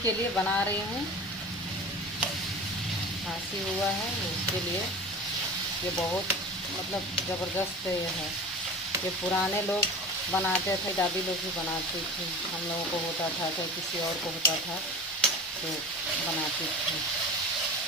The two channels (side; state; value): both; normal; correlation 0.34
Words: के लिए बना रही हूँ। खांसी हुआ है उसके लिए ये बहुत मतलब ज़बरदस्त है। ये पुराने लोग बनाते थे, दादी लोग भी बनाती थी, हम लोगों को होता था चाहे किसी और को होता था तो बनाती थी।